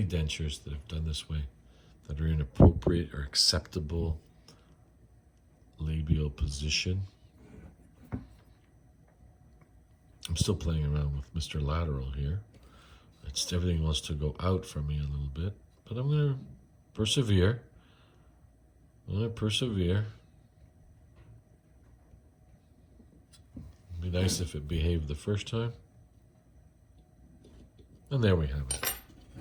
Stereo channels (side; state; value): both; identical; correlation 1.00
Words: dentures that have done this way, that are in appropriate or acceptable labial position. I'm still playing around with Mr. Lateral here. Everything wants to go out from me a little bit, but I'm going to persevere. I'm going to persevere. It'd be nice if it behaved the first time. And there we have it.